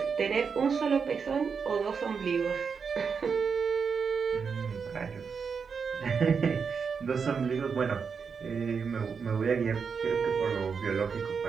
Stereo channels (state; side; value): quieter; left; 5.9 dB